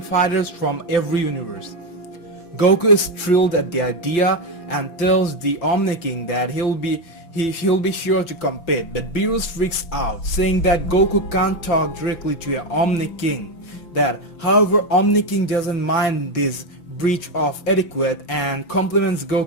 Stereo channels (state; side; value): late; right; 5.9 ms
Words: from every universe. Goku is thrilled at the idea and tells the Omni-king that he'll be sure to compete, but Beerus freaks out, saying that Goku can't talk directly to an Omni-king. That, however, Omni-king doesn't mind this breach of etiquette and compliments